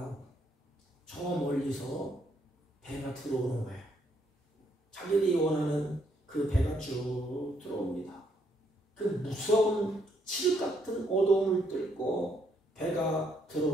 저 멀리서 배가 들어오는 거예요. 자기들이 원하는 그 배가 쭉 들어옵니다. 그 무서운 칠 같은 어두움을 뚫고 배가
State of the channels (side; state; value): both; normal; correlation 0.73